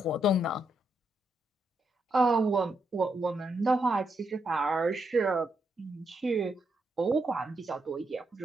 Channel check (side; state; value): both; normal; correlation 0.80